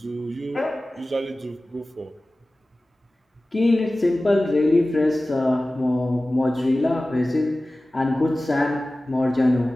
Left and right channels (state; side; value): normal; both; correlation 0.97